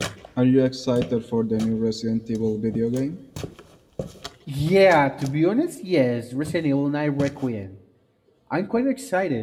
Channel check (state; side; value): identical; both; correlation 1.00